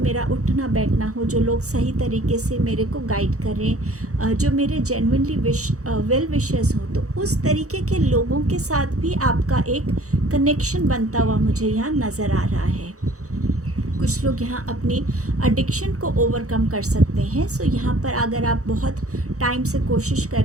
मेरा उठना बैठना हो, जो लोग सही तरीके से मेरे को गाइड करें, जो मेरे जेन्युइनली वेल विशर्स हों, तो उस तरीके के लोगों के साथ भी आपका एक कनेक्शन बनता हुआ मुझे यहाँ नज़र आ रहा है। कुछ लोग यहाँ अपनी एडिक्शन को ओवरकम कर सकते हैं। सो यहाँ पर अगर आप बहुत टाइम से कोशिश कर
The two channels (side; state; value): left; late; 0.65 ms